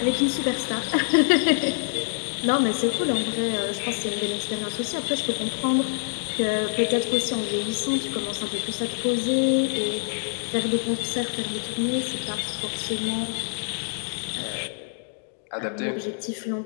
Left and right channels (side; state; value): right; silent; digital silence